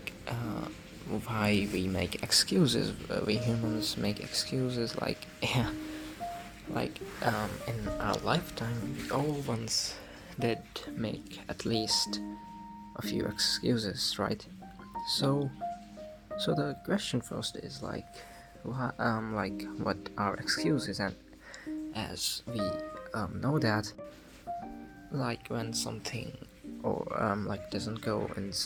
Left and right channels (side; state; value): both; identical; correlation 1.00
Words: why we make excuses. We humans make excuses, like yeah, in our lifetime, we all once did make at least a few excuses, right? So, so the question first is what are excuses? And as we know that, like when something or doesn't go in